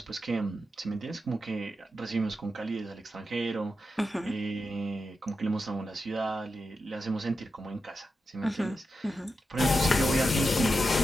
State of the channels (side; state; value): both; normal; correlation 0.89